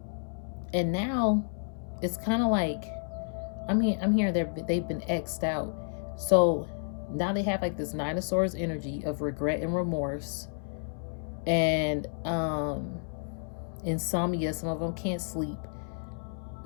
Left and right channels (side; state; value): right; silent; 57 dB below the other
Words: And now it's kind of like, I'm hearing they've been X'd out. So now they have like this Nine of Swords energy of regret and remorse. And insomnia. Some of them can't sleep.